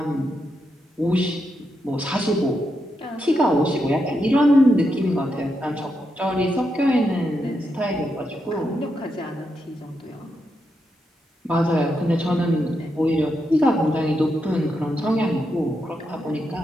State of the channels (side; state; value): both; normal; correlation 0.84